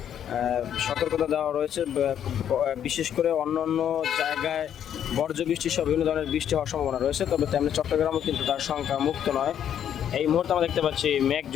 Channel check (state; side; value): quieter; right; 9.6 dB